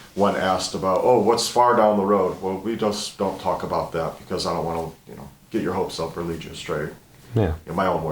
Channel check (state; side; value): identical; both; correlation 1.00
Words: when asked about, oh, what's far down the road? Well, we just don't talk about that because I don't want to, get your hopes up or lead you astray. Yeah. In my own